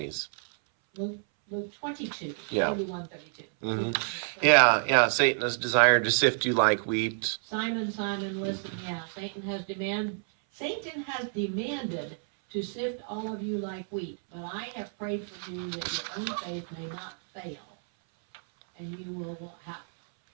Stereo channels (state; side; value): silent; left; 58 dB below the other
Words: Luke 22, Yeah. 31, 32. Mhm. Yeah, Satan has desired to sift you like wheat. Simon, Simon, listen, Satan has demanded to sift all of you like wheat, but I have prayed for you that your own faith may not fail. And